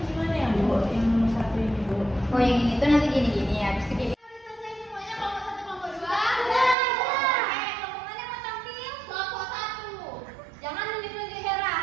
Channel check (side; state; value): left; drops out; at 6.8 s